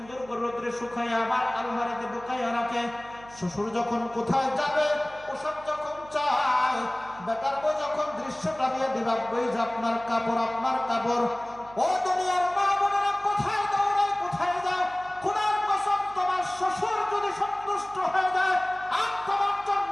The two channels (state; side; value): noise; right; hum, 22 dB below the sound